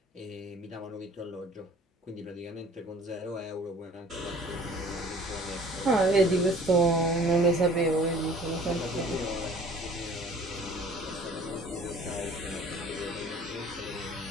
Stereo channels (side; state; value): both; normal; correlation 0.51